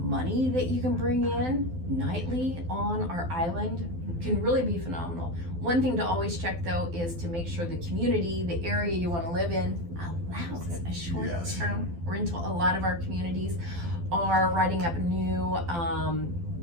that you can bring in nightly on our island can really be phenomenal. One thing to always check though is to make sure the community, the area you want to live in, allows a short-term rental. A lot of our communities are writing up new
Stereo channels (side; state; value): left; late; 12 ms